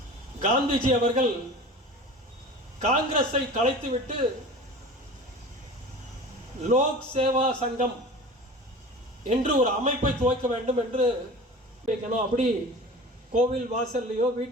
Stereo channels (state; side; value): normal; both; correlation 0.37